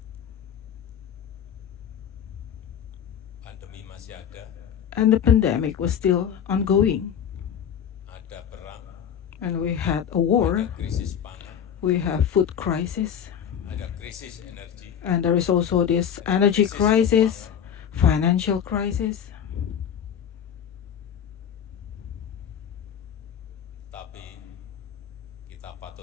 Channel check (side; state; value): right; quieter; 8.6 dB